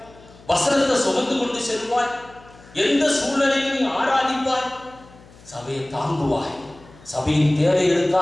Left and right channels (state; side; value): noise; left; hum, 24 dB below the sound